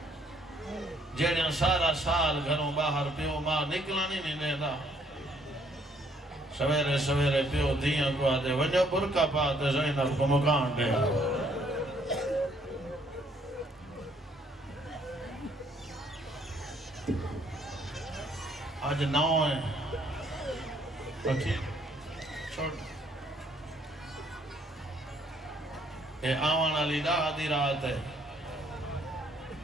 جیڑیاں سارا سال گھروں باہر پیو ماں نکلانی نہیں دینا سویرے سویرے پیو دیاں کو آدھے ونجا برکا پاتے زینب کو مکان دے آج 9 ہیں پکی چھوڑ اے آوان علی دا آدھی رات ہے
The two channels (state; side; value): normal; both; correlation 0.66